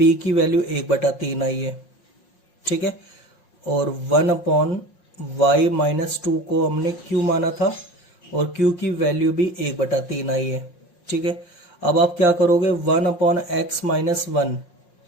की वैल्यू 1/3 आई है, ठीक है। और 1/y माइनस 2 को हमने Q माना था और Q की वैल्यू भी 1/3 आई है, ठीक है। अब आप क्या करोगे, 1/x माइनस 1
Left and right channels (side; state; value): right; late; 5.6 ms